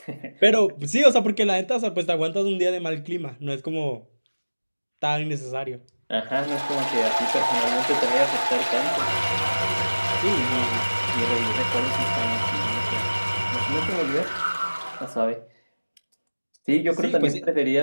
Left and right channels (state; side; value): inverted; both; correlation -1.00